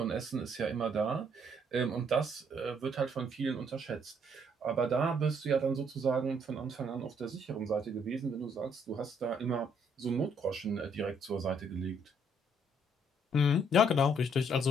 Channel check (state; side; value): normal; both; correlation 0.68